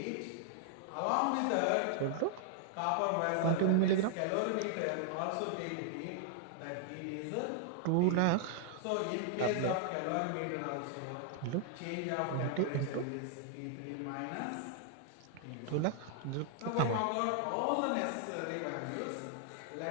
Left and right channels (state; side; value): different; both; correlation -0.01